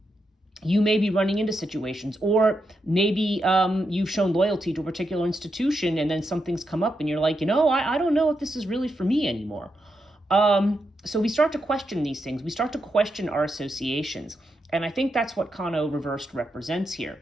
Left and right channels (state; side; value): normal; both; correlation 0.84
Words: you may be running into situations, or maybe you've shown loyalty to a particular institution and then something's come up and you're like, I don't know if this is really for me anymore. So we start to question these things. We start to question our associations. And I think that's what Kano reversed represents here.